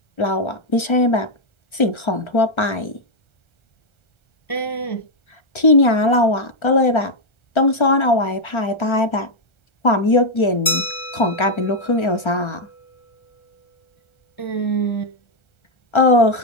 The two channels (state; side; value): late; right; 1.3 ms